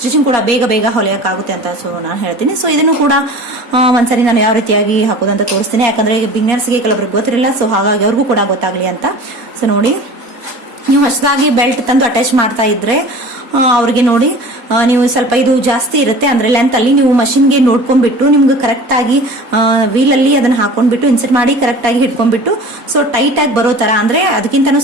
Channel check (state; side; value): late; left; 4.2 ms